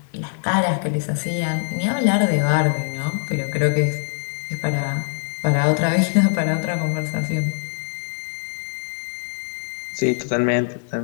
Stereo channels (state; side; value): silent; right; digital silence